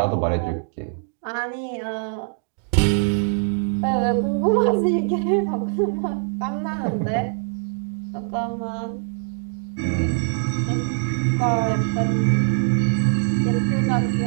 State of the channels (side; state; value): left; silent; digital silence